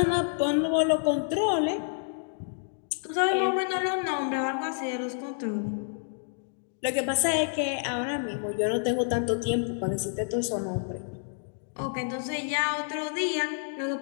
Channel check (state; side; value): silent; right; digital silence